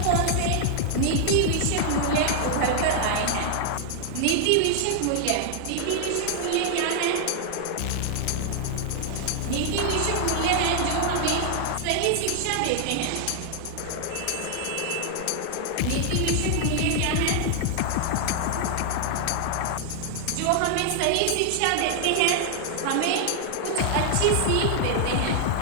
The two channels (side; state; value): both; different; correlation 0.00